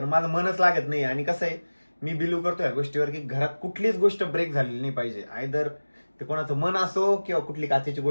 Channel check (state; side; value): inverted; both; correlation -1.00